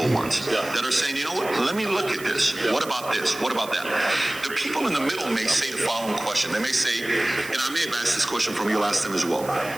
ones, that are saying, you know what, let me look at this. What about this? What about that? The people in the middle may say the following question. They may say, and I may have asked this question from you last time as well.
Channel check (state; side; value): noise; right; hiss, 15 dB below the sound